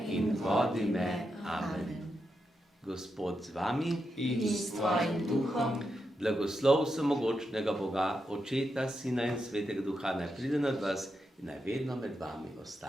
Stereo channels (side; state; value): both; normal; correlation 0.86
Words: in vodi me. Amen. Gospod z vami In s tvojim duhom. Blagoslov vsemogočnega Boga, Očeta, Sina in Svetega Duha, naj pride nad vas in naj vedno med vami